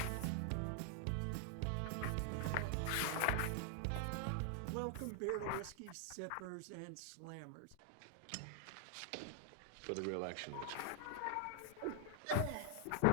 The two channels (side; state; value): both; different; correlation 0.00